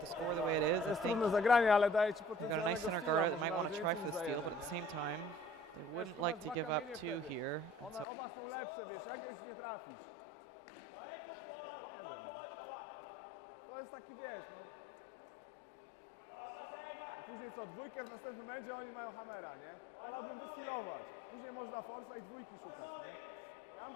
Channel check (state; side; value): drops out; right; at 8.1 s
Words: score the way it is. I Jest think trudne zagranie, ale daje ci we've got a nice center guard that might want to try for the potencjalnego steal, but at the same time, they wouldn't like to give up 2 here. And so by hitting that back red one, they could kind of very much reduce the risk that the Scottish team could get their 2. So depends on what they want to go for and whether or not they want to try and make a run for the steal now, or whether they want to